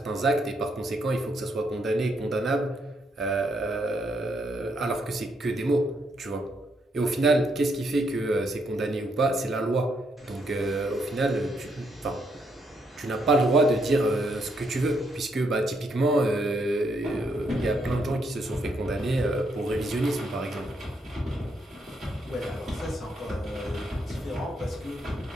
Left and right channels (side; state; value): both; normal; correlation 0.76